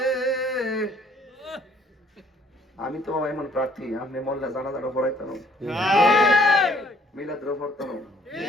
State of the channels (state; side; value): normal; both; correlation 0.62